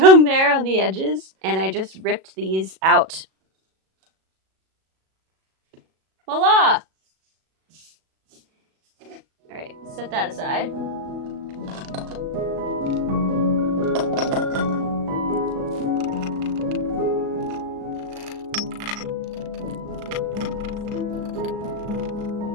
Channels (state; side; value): late; left; 37 ms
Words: there on the edges. And I just ripped these out. Voila! All right, set that aside.